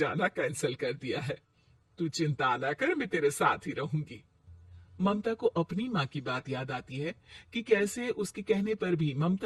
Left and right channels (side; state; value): both; identical; correlation 1.00